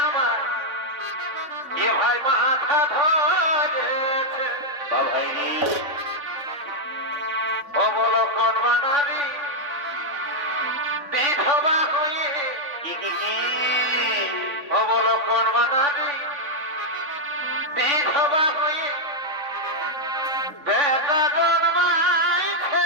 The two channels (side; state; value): left; late; 3.5 ms